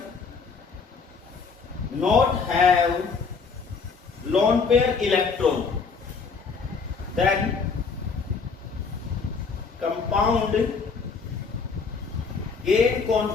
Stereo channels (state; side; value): quieter; right; 5.1 dB